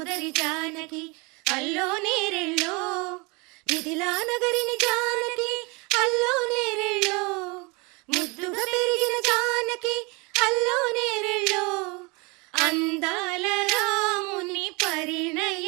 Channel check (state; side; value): quieter; left; 28.4 dB